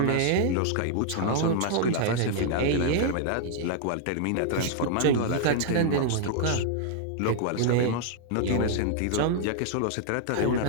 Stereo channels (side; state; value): both; different; correlation 0.00